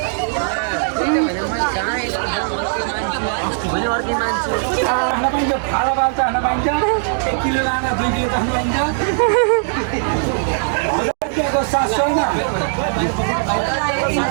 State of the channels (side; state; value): left; silent; digital silence